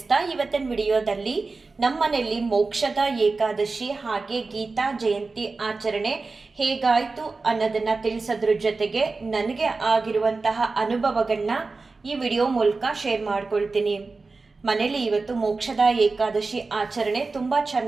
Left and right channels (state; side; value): quieter; left; 3.9 dB